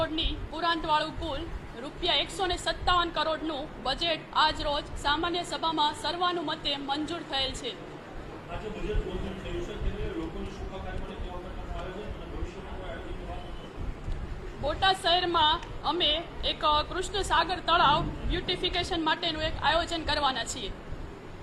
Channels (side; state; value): both; identical; correlation 1.00